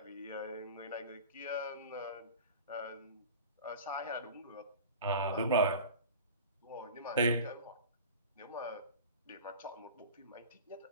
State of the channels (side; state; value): both; inverted; correlation -0.37